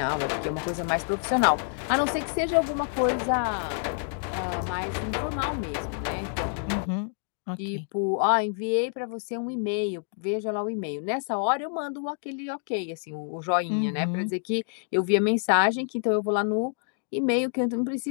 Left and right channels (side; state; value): right; silent; 60 dB below the other